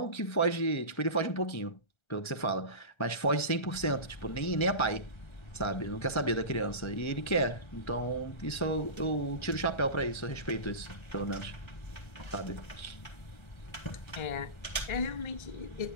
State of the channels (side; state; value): right; late; 1.3 ms